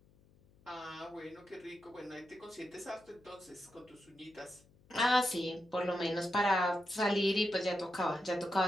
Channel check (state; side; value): noise; left; hum, 29 dB below the sound